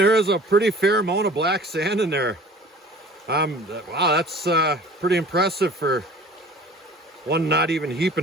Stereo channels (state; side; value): normal; both; correlation 0.45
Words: is a pretty fair amount of black sand in there. Wow, that's pretty impressive for one not even